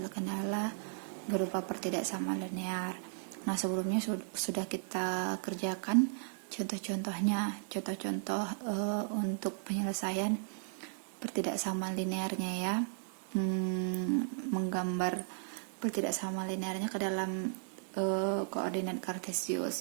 berupa pertidaksamaan linear. Nah, sebelumnya sudah kita kerjakan contoh-contoh untuk penyelesaian pertidaksamaan linearnya ya. Menggambar pertidaksamaan linearnya ke dalam koordinat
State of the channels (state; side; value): silent; left; digital silence